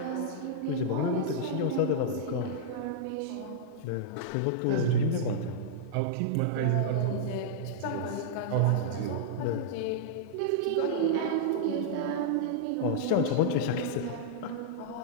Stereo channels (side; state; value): both; different; correlation -0.03